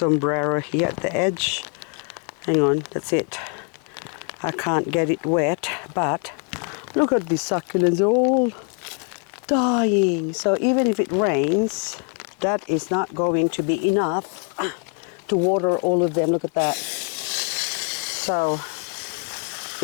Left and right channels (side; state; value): right; quieter; 39.2 dB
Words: here at the edge. Hang on, that's it. I can't get it wet, but look at these succulents, they're all dying. So even if it rains, that is not going to be enough to water all of them. Look at that. So